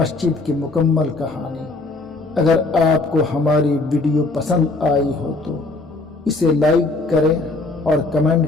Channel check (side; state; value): right; quieter; 3.3 dB